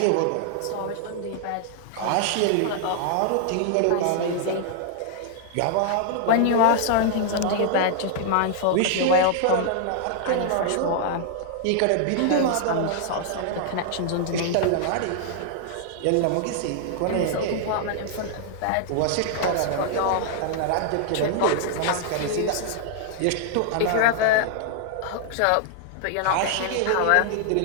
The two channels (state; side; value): different; both; correlation -0.01